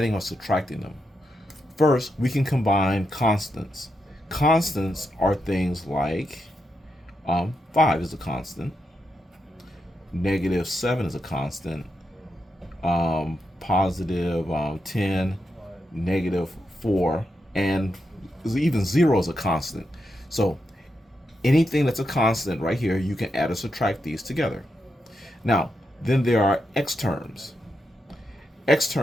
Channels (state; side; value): normal; both; correlation 0.85